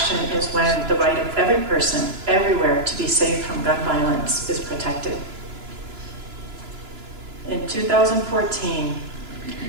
is when the right of every person, everywhere, to be safe from gun violence is protected. In 2014,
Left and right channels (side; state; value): left; late; 2.9 ms